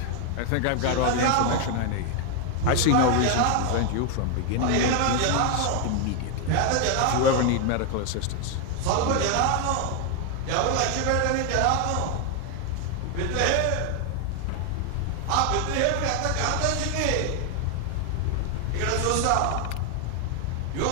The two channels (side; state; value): both; different; correlation 0.01